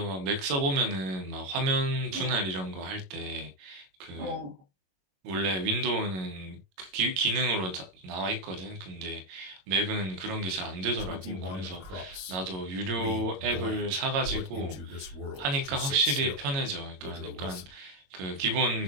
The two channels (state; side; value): late; left; 22 ms